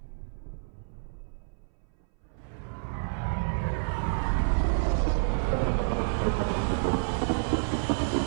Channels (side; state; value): left; silent; 58 dB below the other